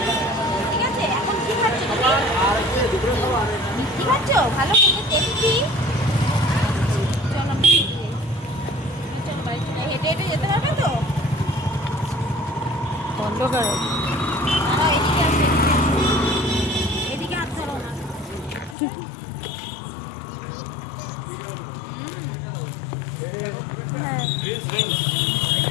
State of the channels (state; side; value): drops out; right; at 18.8 s